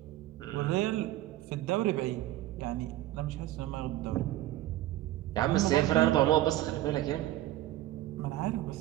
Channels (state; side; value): quieter; left; 14.9 dB